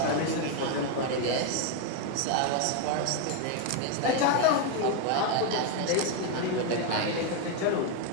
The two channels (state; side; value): different; both; correlation 0.01